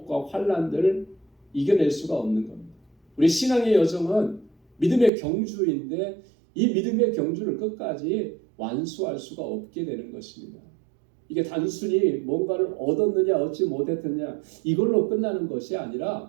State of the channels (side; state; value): left; drops out; at 5.1 s